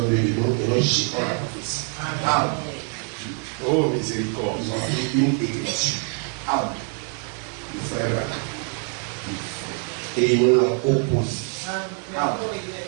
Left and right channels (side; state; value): left; quieter; 37.3 dB